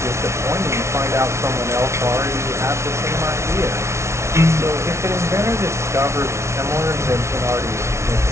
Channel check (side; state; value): left; late; 0.13 ms